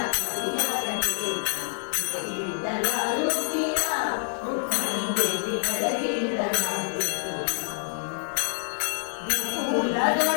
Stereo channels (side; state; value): right; silent; 60 dB below the other